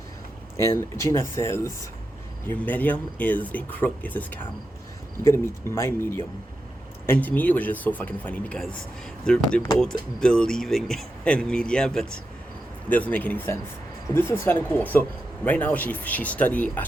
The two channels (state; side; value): normal; both; correlation 0.88